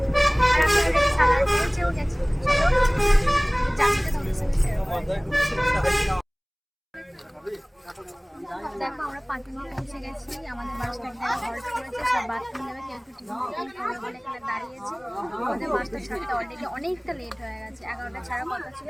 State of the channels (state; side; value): identical; both; correlation 1.00